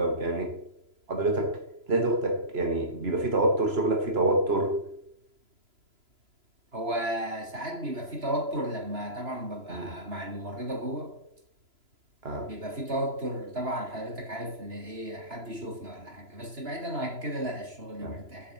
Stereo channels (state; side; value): late; left; 3.0 ms